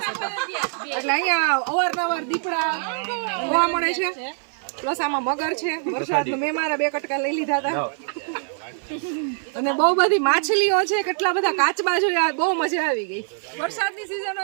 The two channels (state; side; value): silent; left; 56 dB below the other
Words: એટલે અહીંયા અવારનવાર દીપડા જોવા મળે છે. પ્લસ આમાં મગર છે. વરસાદનું મેં મારા 2 કટકા લઈ લીધા હતા. અને બહુ બધી માછલીઓ છે, કેટલા બધા કાચબા જોયા, બહુ મજા આવી ગઈ. વરસાદની સિઝન